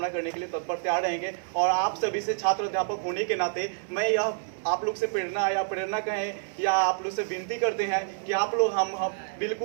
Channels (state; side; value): silent; left; 59 dB below the other